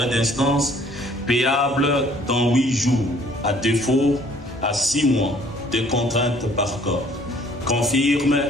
d'instance payable dans 8 jours, à défaut à 6 mois de contraintes par corps, confirme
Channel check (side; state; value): both; normal; correlation 0.58